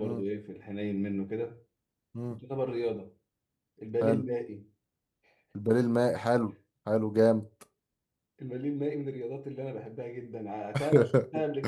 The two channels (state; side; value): identical; both; correlation 1.00